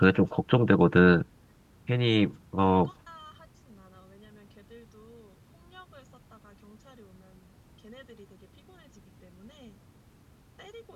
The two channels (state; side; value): identical; both; correlation 1.00